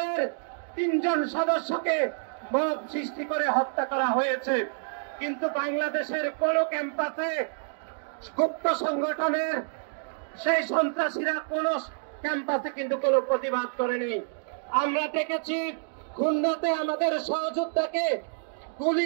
৩ জন সদস্যকে মব সৃষ্টি করে হত্যা করা হয়েছে। কিন্তু বাংলাদেশের কোন ক্যাম্পাসে গুপ্ত সংগঠনের সেই সন্ত্রাসীরা কোন ক্যাম্পাসে কিন্তু কোনো প্রতিবাদ করেনি। আমরা দেখেছি খুলনাতে আমাদের সহযোদ্ধাকে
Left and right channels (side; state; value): left; silent; digital silence